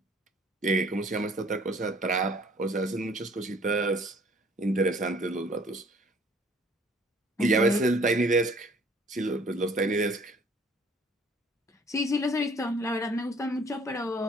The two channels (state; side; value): normal; both; correlation 0.57